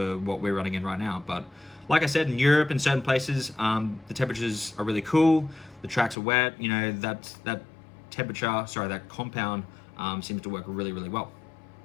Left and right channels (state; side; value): drops out; right; at 6.2 s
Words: what we're running in right now. But like I said, in Europe and certain places, the temperatures are really cool. The tracks are wet. You know, that compound seems to work really, really well.